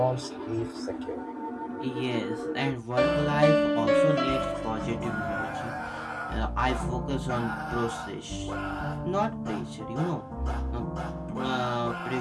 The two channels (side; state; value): both; identical; correlation 1.00